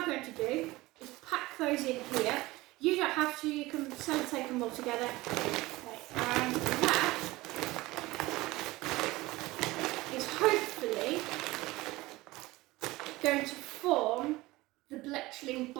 going to do is pack those in here. You don't have to, you can sellotape them all together. Okay, and that is hopefully going to form the Bletchling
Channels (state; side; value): quieter; left; 19.8 dB